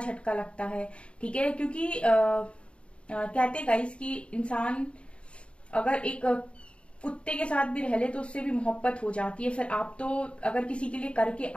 लगता है। ठीक है, क्योंकि कहते गाइस कि इंसान अगर एक कुत्ते के साथ भी रह ले तो उससे भी मोहब्बत हो जाती है। फिर आप तो अगर किसी के लिए करके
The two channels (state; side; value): late; right; 0.058 ms